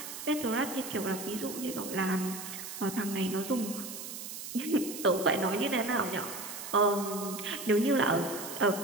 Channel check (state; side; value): noise; right; hiss, 9 dB below the sound